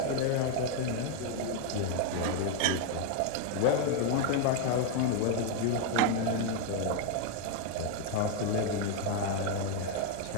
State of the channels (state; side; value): different; both; correlation 0.00